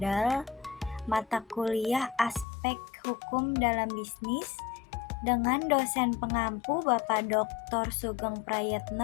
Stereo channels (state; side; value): drops out; right; at 2.5 s